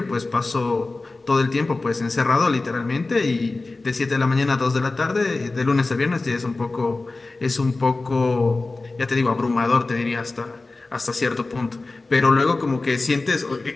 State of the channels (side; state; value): right; quieter; 3.4 dB